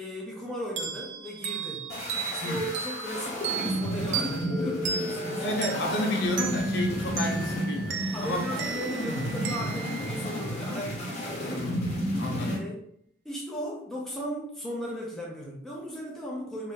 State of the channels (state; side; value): normal; both; correlation 0.48